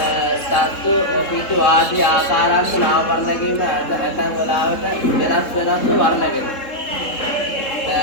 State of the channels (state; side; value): late; right; 3.7 ms